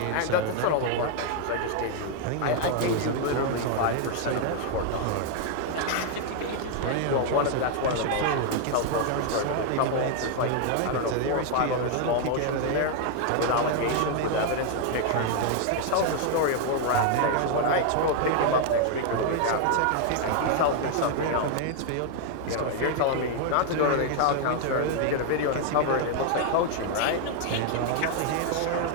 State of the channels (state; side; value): different; both; correlation 0.00